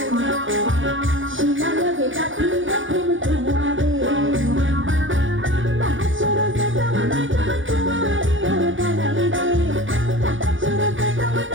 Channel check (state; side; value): late; left; 0.56 ms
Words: শিলা লগে গাথি দেখুন তোমারে বাহাসুর সে তোমারে তোমারে ওর গালাই রে বাহাসুর সে